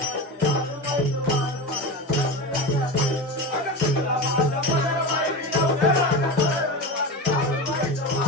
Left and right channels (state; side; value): normal; both; correlation 0.24